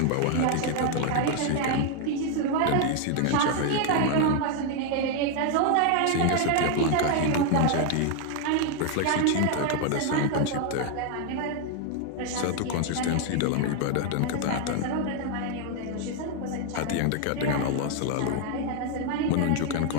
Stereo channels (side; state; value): both; different; correlation 0.00